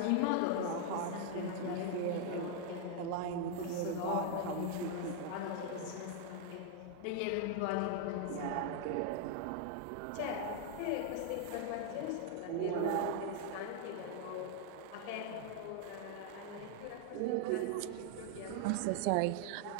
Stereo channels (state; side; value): different; both; correlation 0.00